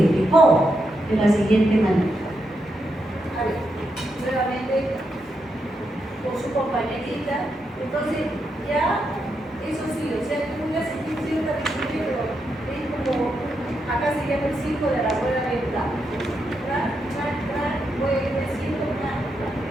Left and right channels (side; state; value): both; normal; correlation 0.83